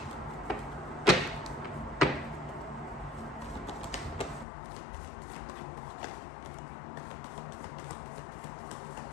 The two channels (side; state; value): right; drops out; at 4.5 s